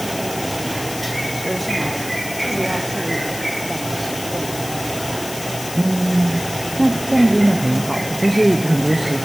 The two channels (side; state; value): left; noise; hiss, 10 dB below the sound